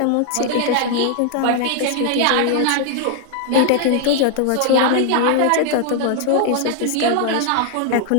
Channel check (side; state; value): both; different; correlation 0.00